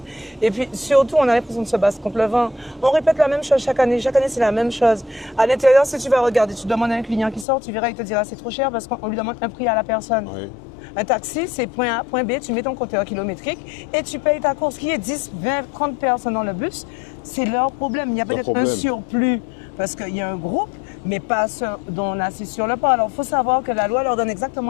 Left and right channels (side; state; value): right; drops out; at 7.5 s